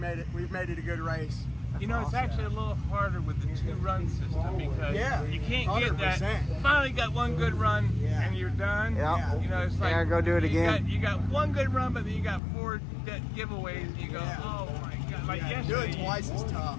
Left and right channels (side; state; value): right; drops out; at 12.4 s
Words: it a good race. You know, it's actually a little harder with the 2-run system, because you can't 100%. Get that. Finally got one good run and you're done. You know, it's like go do it again. You got one good run, but then you got 4 giveaways, and you go, oh my god! Like yesterday, doing twice is tough.